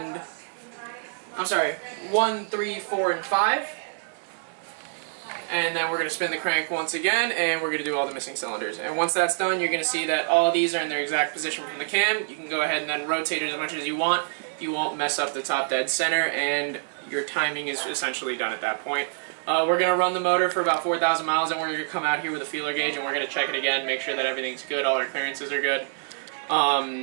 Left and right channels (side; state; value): left; silent; 57 dB below the other